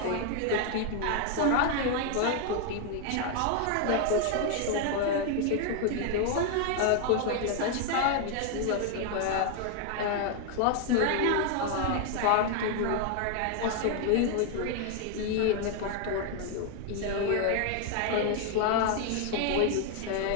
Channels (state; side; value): different; both; correlation 0.00